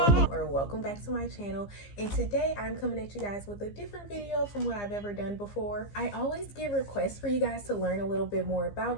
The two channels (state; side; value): late; right; 15 ms